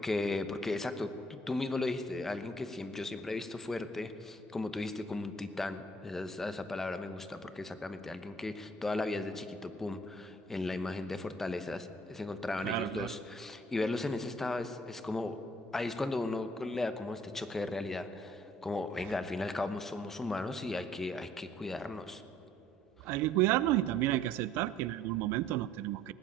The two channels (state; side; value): normal; both; correlation 0.59